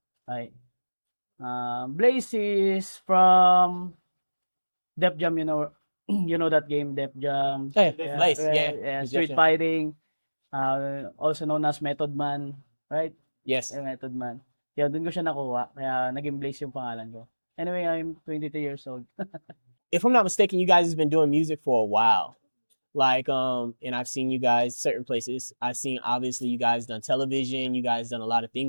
Blaze is from Def Jam, you know that game, Def Jam. Hey, Blaze, yeah. Yes, Street yes. fighting, also known as Method Man, right? Yes. Method Man. Kaya doon ko siya nakuha, kaya naging Blaze yung pangalan ko. Anyway, I'm 22 years old. If I'm not mistaken, you guys have been doing music for a while. Like, and I've seen you guys certain places. I've seen, obviously, you guys done television. You guys done a lot of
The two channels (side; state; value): both; inverted; correlation -1.00